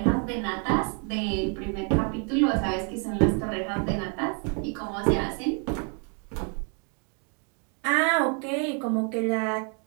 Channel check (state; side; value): quieter; left; 39.4 dB